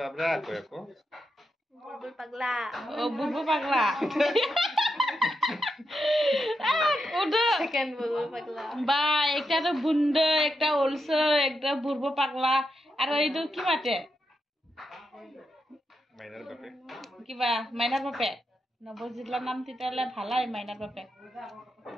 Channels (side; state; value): both; normal; correlation 0.85